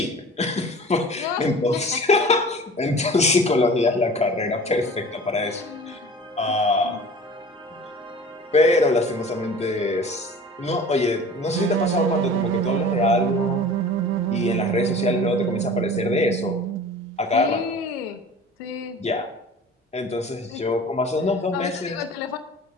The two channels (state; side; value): normal; both; correlation 0.41